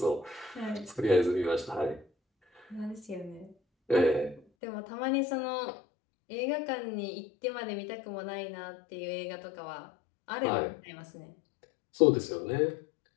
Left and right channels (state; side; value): drops out; right; at 4.4 s